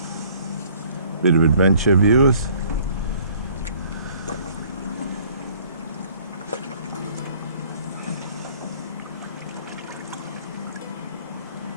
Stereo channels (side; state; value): both; inverted; correlation -0.57